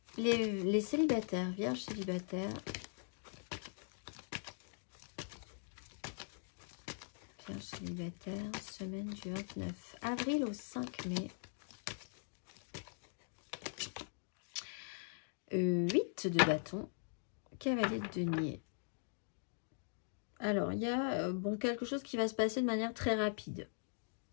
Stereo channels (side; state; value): right; silent; digital silence